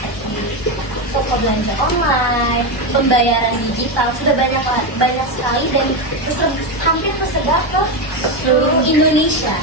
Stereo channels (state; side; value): late; right; 1.1 ms